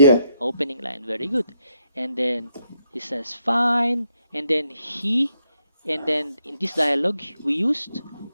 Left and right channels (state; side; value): inverted; both; correlation -0.77